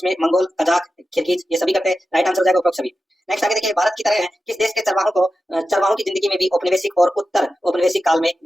मंगोल, कजाक, किर्गिज ये सभी करते हैं, राइट आंसर हो जाएगा उपरोक्त सभी। नेक्स्ट आगे देखिए भारत की तरह किस देश के चरवाहों की जिंदगी में भी औपनिवेशिक और उत्तर औपनिवेशिक काल में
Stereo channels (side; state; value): both; normal; correlation 0.92